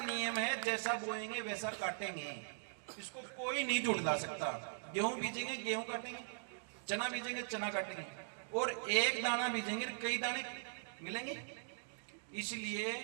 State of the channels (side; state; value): left; silent; digital silence